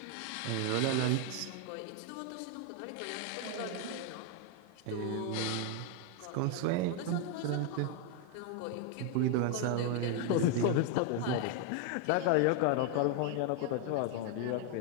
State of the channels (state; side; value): different; both; correlation 0.01